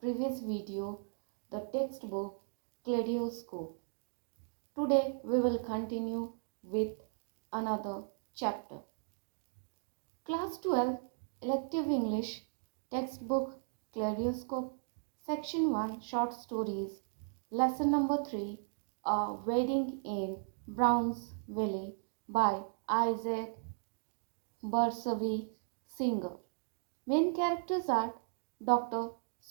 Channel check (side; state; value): left; silent; digital silence